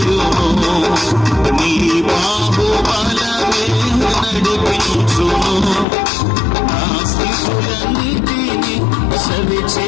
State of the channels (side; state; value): right; drops out; at 5.9 s